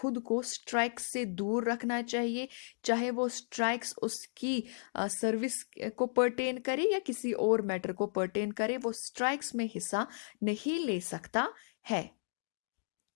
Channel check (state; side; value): silent; right; digital silence